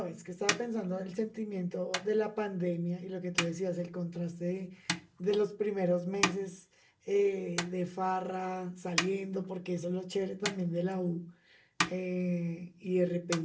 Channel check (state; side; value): identical; both; correlation 1.00